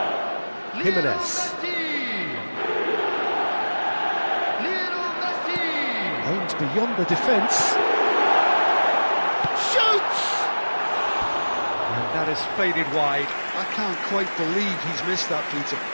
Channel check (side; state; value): both; inverted; correlation -1.00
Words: Jimenez. Lionel Messi. Aims beyond the defence. Shoots! And that has faded wide. I can't quite believe he's missed that, Peter.